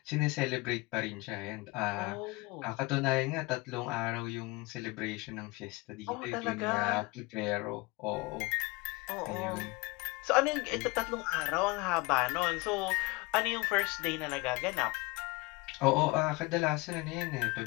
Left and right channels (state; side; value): quieter; right; 24.7 dB